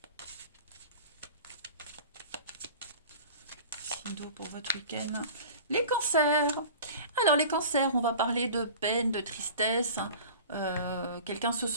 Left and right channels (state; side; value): inverted; both; correlation -0.40